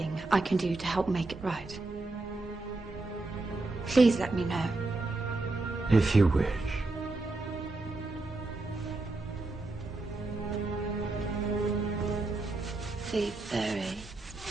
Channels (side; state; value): left; quieter; 3.1 dB